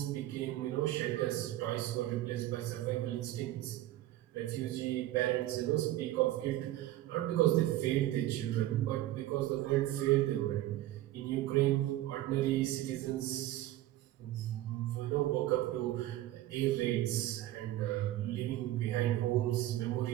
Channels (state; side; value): quieter; left; 14.9 dB